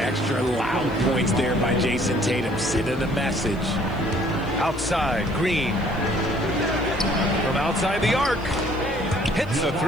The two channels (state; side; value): noise; left; hiss, 28 dB below the sound